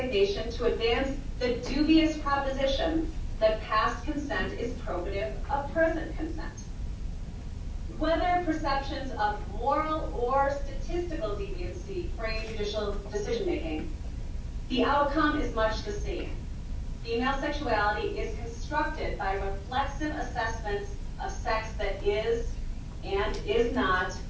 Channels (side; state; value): both; identical; correlation 1.00